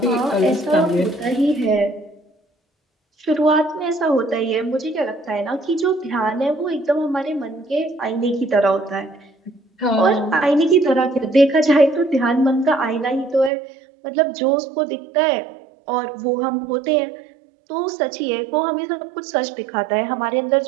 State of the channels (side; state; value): left; drops out; at 13.5 s